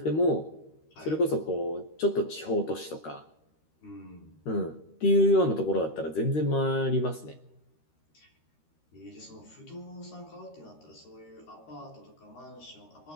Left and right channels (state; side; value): late; right; 13 ms